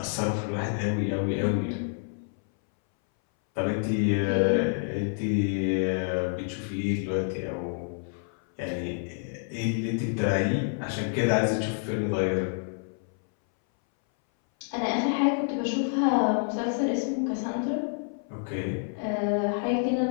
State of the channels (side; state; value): right; silent; 59 dB below the other